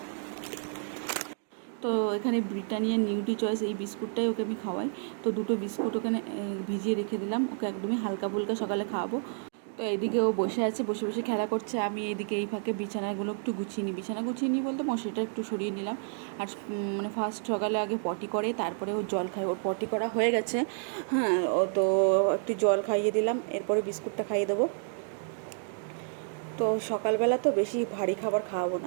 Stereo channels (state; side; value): silent; left; digital silence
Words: তো এখানে ব্রিটানিয়া নিউট্রি চয়েস এই বিস্কুটটাই ওকে আমি খাওয়াই। তো দুটো বিস্কুট ওখানে ভিজিয়ে রেখে দিলাম, ওকে একদমই হালকা ফুলকা সকালে খাওয়াবো। তো এইদিকে ও বসে আছে, বসে বসে খেলা করছে। আমি এইদিকে এই ফাঁকে বিছানাগুলো একটু গুছিয়ে নিই। বিছানা গুছিয়ে নিই বলতে মশারিটা একটু সরিয়ে নিলাম। আর মানে ফার্স্ট সকালে আগে পটি করে, তারপরে ও জল খায়। ওর পটি করা হয়ে গেছে, হ্যাঁ। ও তো একটু জল খাইয়ে দিলাম, এরপরে বিস্কুটটা খাইয়ে দেবো। তো সকালবেলা তো বেশি ভারী খাবার খাওয়াবো